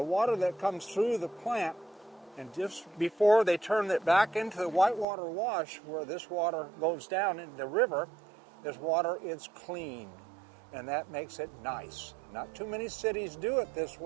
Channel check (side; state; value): left; drops out; at 5.1 s